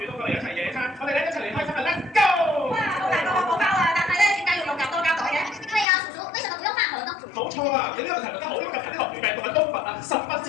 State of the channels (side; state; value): right; drops out; at 5.9 s